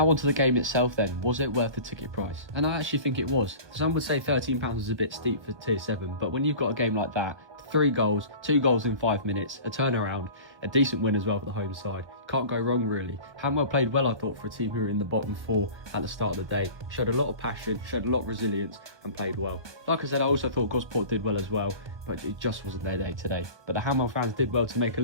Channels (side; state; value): left; late; 1.2 ms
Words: onto the game itself then. Was it worth the ticket price? And I actually think it was. Some would say £13 is a bit steep for tier 7, but when you've got a game like that, 3 goals, 2 goals in 5 minutes, a turnaround, a decent win as well for the home side. Can't go wrong really. Hanwell played well, I thought, for a team who were in the bottom 4 at the start of the day. Showed a lot of passion, showed a lot of resilience and played well. Like I said, I also thought Gosport did well as well, but it just wasn't their day today. But the Hanwell fans did well to make a